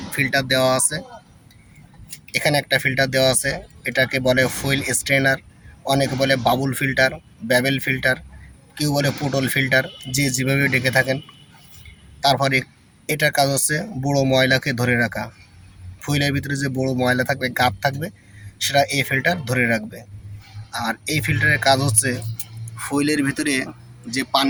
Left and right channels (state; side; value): identical; both; correlation 1.00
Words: ফিল্টার দেওয়া আছে, এখানে একটা ফিল্টার দেওয়া আছে, এটাকে বলে ফুয়েল স্ট্রেনার, অনেকে বলে বাবুল ফিল্টার, ব্যাবেল ফিল্টার, কেউ বলে পুটল ফিল্টার, যে যেভাবে ডেকে থাকেন। তারপরে এটার কাজ হচ্ছে বড়ো ময়লাকে ধরে রাখা, ফুয়েলের ভিতরে যে বড়ো ময়লা থাকবে, গাদ থাকবে, সেটা এই ফিল্টার ধরে রাখবে। আর এই ফিল্টারের কাজ হচ্ছে ফুয়েলের ভিতরে যে